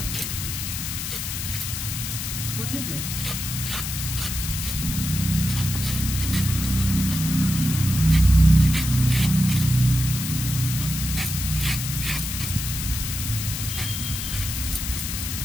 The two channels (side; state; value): left; noise; hiss, 5 dB below the sound